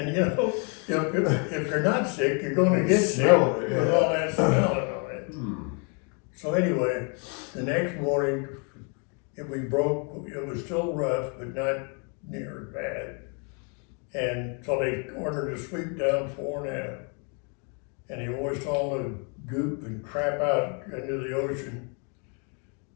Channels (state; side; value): quieter; right; 37.5 dB